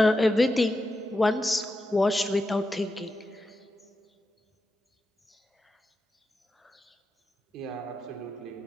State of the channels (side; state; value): both; normal; correlation 0.88